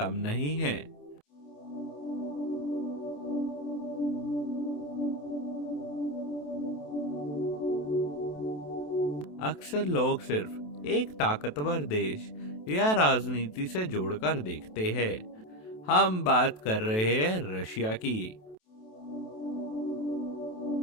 नहीं है। अक्सर लोग सिर्फ एक ताकतवर देश या राजनीति से जोड़कर देखते हैं। हम बात कर रहे हैं रशिया की।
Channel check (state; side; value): late; right; 27 ms